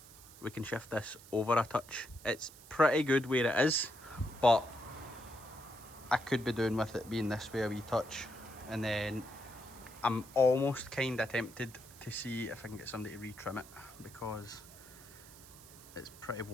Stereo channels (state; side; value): noise; right; hiss, 19 dB below the sound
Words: we can shift this over a touch. It's pretty good where it is, but I could be doing with it being this way a wee touch. And then I'm almost kind of tempted to see if I can get somebody to retrim it because it's pretty